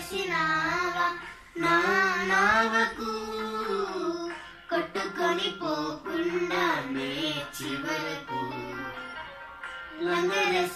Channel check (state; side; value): identical; both; correlation 1.00